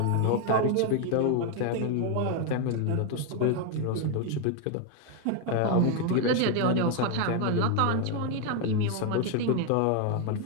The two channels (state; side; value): different; both; correlation 0.01